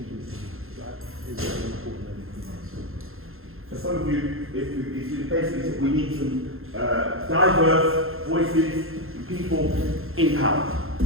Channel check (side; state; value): left; late; 0.61 ms